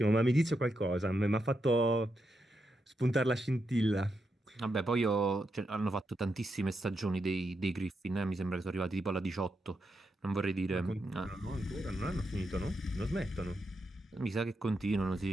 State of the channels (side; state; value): both; normal; correlation 0.84